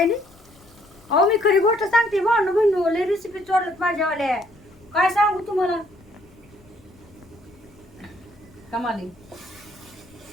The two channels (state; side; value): noise; left; rumble, 27 dB below the sound